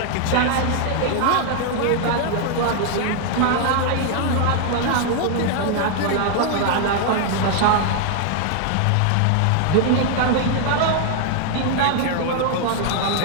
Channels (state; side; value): different; both; correlation 0.00